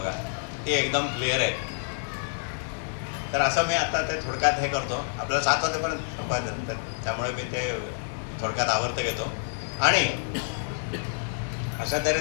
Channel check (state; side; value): silent; right; digital silence